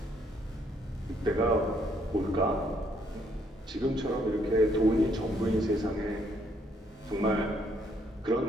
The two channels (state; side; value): normal; both; correlation 0.69